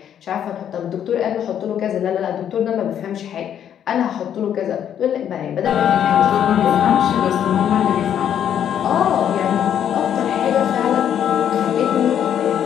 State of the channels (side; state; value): right; quieter; 9.5 dB